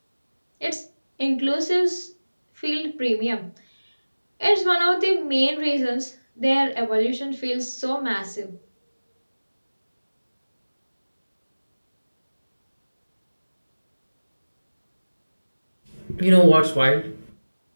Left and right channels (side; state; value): both; inverted; correlation -1.00